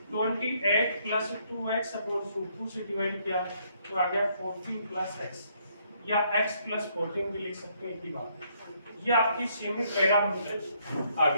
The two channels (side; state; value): both; inverted; correlation -0.70